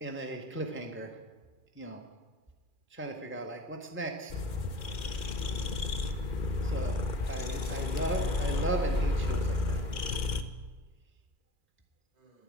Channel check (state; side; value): late; left; 2.4 ms